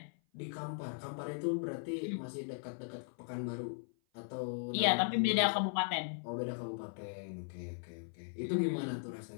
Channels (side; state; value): right; silent; 53 dB below the other